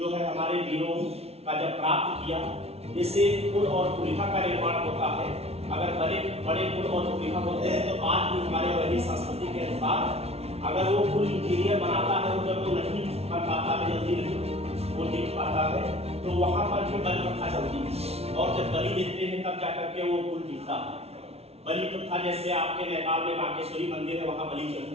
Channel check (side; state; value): left; late; 0.30 ms